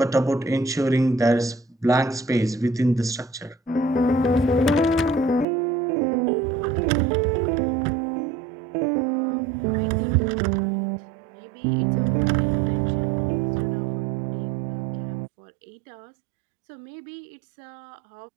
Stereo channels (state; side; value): drops out; left; at 5.5 s